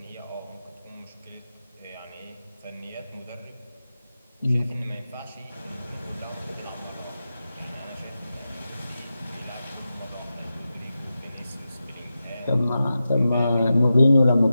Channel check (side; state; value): both; inverted; correlation -0.91